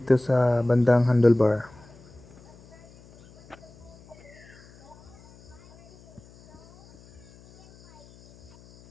sa bandang handlebar.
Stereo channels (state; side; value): noise; left; hum, 25 dB below the sound